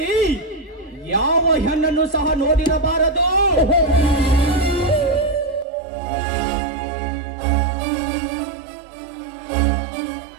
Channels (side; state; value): left; drops out; at 5.7 s